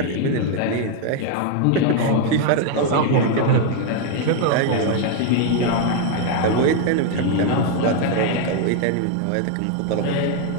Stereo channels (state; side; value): different; both; correlation 0.00